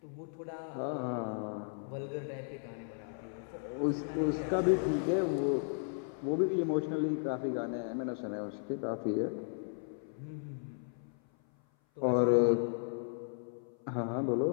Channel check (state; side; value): silent; right; 54 dB below the other